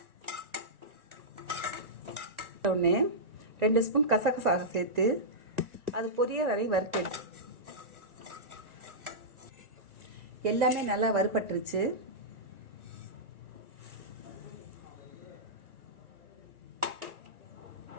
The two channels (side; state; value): left; late; 1.2 ms